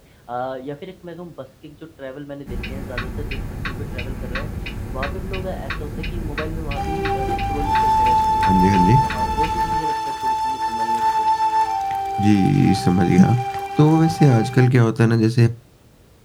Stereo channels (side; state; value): both; identical; correlation 1.00